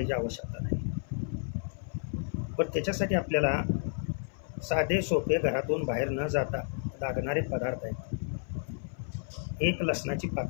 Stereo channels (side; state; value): right; silent; 57 dB below the other